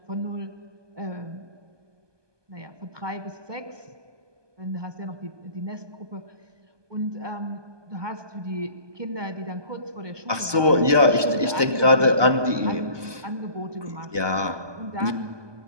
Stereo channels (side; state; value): left; late; 1.2 ms